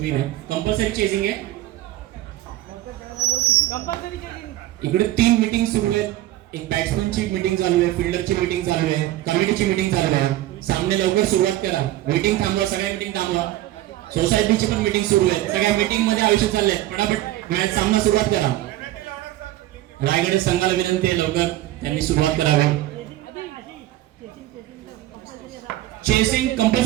विन आहे. कंपल्सरी चेसिंग आहे. इकडे 3 मीटिंग सुरू आहेत एक बॅट्समनची मीटिंग चालू आहे, फिल्डरची मीटिंग चालू आहे, कमिटीची मीटिंग चालू आहे. सामने लवकर सुरुवात करा. मीटिंग थांबवा, सगळ्या मीटिंग थांबवा. सोसायटीची पण मीटिंग सुरू आहे. सगळ्या मीटिंग मध्ये आयुष्य चाललंय. फटाफट मॅच सामना सुरुवात करा. रायगड संघाला विनंती आहे लवकर त्यांनी सुरुवात करावी. चेसिंग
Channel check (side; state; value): left; quieter; 15.0 dB